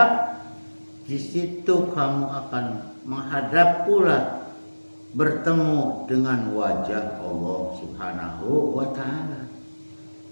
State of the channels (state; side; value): inverted; both; correlation -1.00